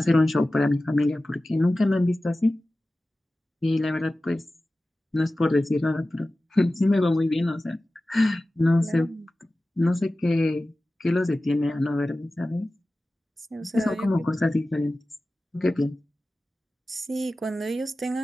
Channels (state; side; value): normal; both; correlation 0.96